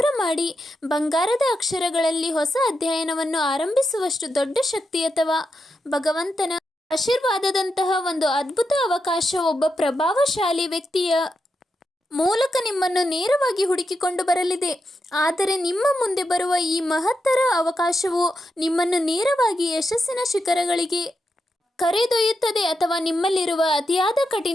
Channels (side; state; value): both; normal; correlation 0.86